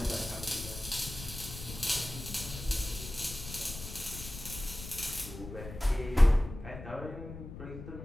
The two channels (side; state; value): left; noise; rumble, 11 dB below the sound